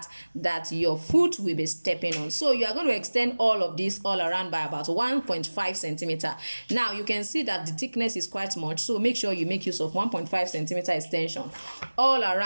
that your foot will be stepping on. So you are going to extend all of this all around by about 1.5 centimeter. Now you can see that the thickness is quite much. So make sure you make use of 1.5 centimeter extension all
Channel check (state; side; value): inverted; both; correlation -1.00